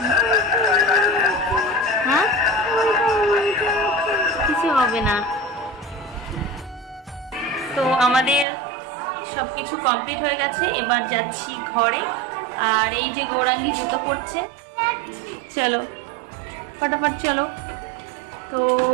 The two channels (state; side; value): drops out; left; at 8.5 s